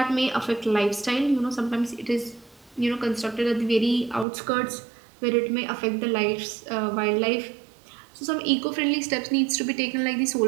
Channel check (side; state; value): left; drops out; at 4.2 s